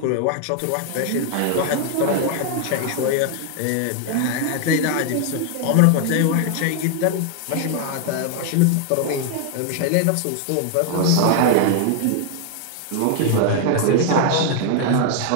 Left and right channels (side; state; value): both; different; correlation 0.00